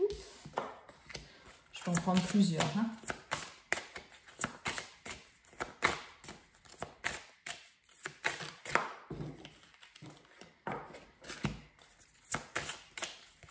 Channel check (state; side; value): identical; both; correlation 1.00